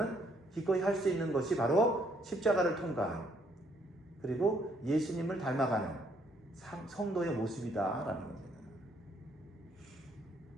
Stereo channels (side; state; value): both; normal; correlation 0.68